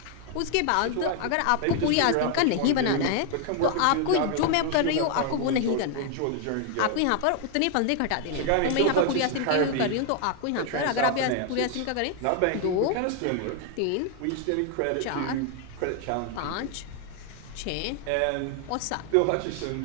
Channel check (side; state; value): both; different; correlation 0.00